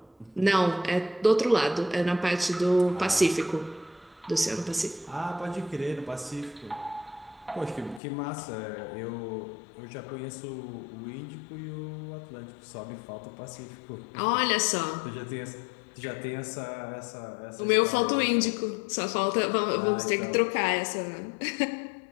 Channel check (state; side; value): drops out; right; at 8.0 s